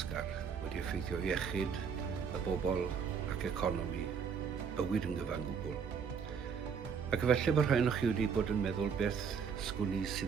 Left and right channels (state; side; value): quieter; left; 6.5 dB